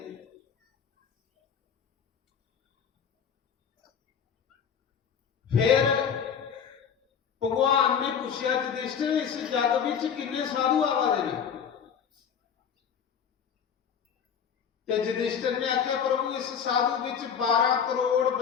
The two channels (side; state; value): right; quieter; 7.5 dB